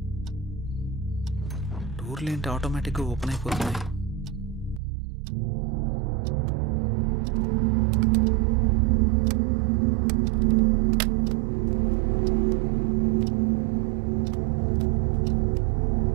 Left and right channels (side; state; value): left; drops out; at 4.8 s